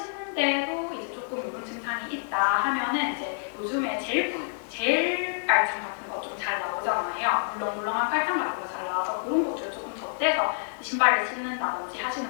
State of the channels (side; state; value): right; silent; digital silence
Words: 이제 조금 이런 증상이 있다 하면은 이제 요즘에 젤 깔창 같은 거 좀 잘 나오잖아요. 물렁물렁한 깔창 같은 거 잘 나와서 그런 것들 조금 덧대서 신발을 신는다든지 하시는